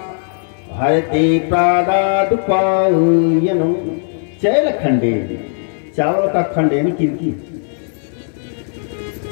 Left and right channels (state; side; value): silent; right; 68 dB below the other